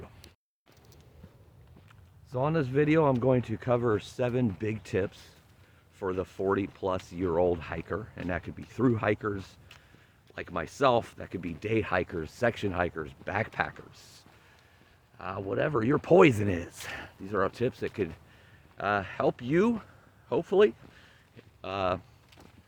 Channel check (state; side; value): identical; both; correlation 1.00